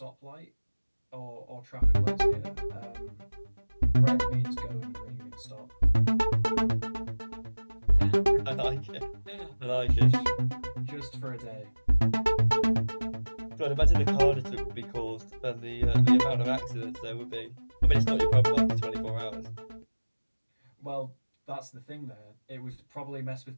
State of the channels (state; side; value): inverted; both; correlation -1.00